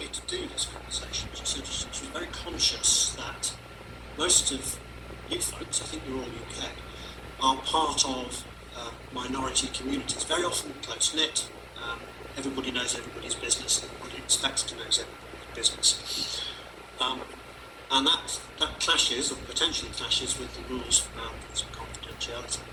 to do this conversation, she said she was very conscious that most of you folks, I think you're all UK, are part of minority communities, very often close-knit. Everybody knows everybody's business, everybody expects to know everybody's business. And that clashes, or potentially clashes, with the rules around confidentiality.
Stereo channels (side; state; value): both; identical; correlation 1.00